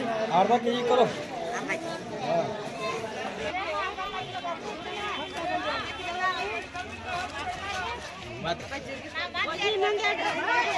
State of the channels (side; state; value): both; identical; correlation 1.00